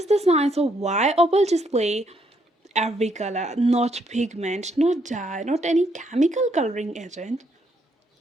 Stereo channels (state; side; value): normal; both; correlation 0.73